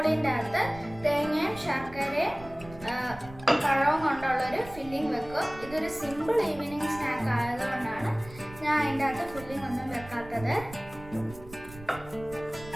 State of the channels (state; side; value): noise; right; rumble, 17 dB below the sound